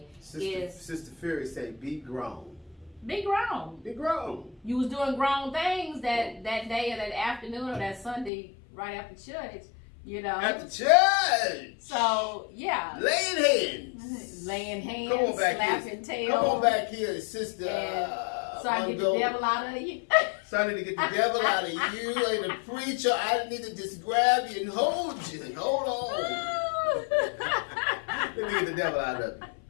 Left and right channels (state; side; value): drops out; right; at 8.3 s